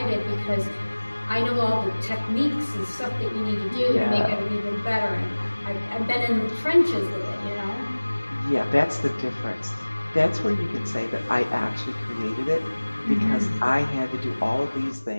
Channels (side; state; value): both; inverted; correlation -1.00